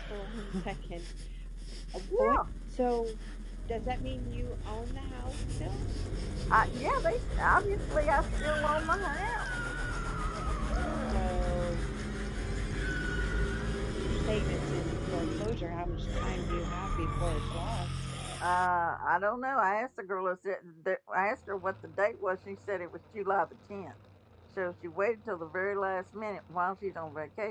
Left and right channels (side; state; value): both; identical; correlation 1.00